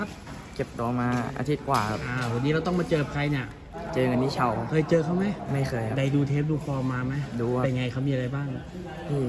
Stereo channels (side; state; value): both; identical; correlation 1.00